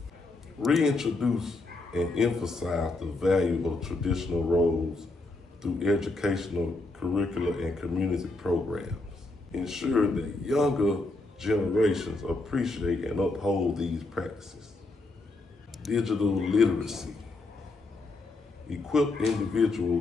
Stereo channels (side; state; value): right; quieter; 3.1 dB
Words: Reintroduce and emphasize the value of traditional roles through educational, curricular, and community programs. Ensure that younger generations appreciate and uphold these practices. Digital literacy. Equip